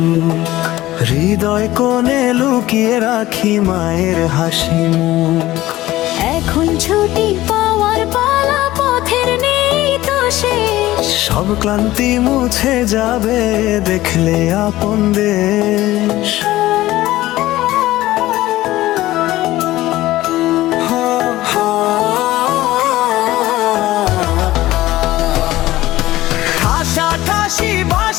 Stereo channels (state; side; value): quieter; right; 16.4 dB